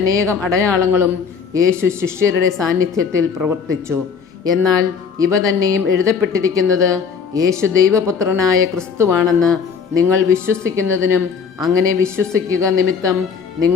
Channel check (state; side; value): quieter; right; 6.2 dB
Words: അടയാളങ്ങളും യേശു ശിഷ്യരുടെ സാന്നിധ്യത്തിൽ പ്രവർത്തിച്ചു. എന്നാൽ ഇവ തന്നെയും എഴുതപ്പെട്ടിരിക്കുന്നത് യേശു ദൈവപുത്രനായ ക്രിസ്തുവാണെന്ന് നിങ്ങൾ വിശ്വസിക്കുന്നതിനും അങ്ങനെ വിശ്വസിക്കുക നിമിത്തം